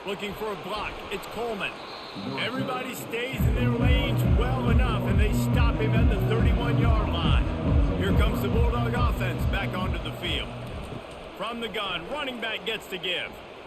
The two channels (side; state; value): both; identical; correlation 1.00